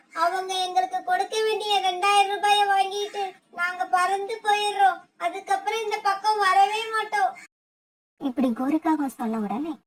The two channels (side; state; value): both; identical; correlation 1.00